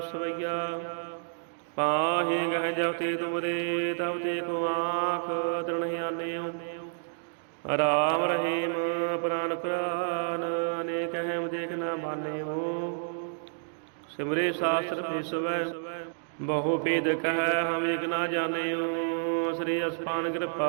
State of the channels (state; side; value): silent; left; digital silence